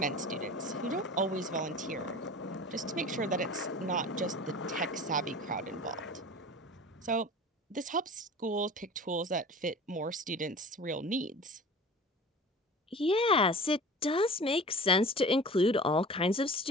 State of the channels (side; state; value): both; normal; correlation 0.39